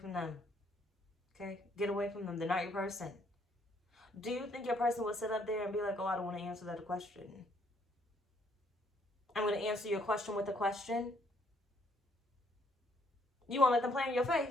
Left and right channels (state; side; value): normal; both; correlation 0.68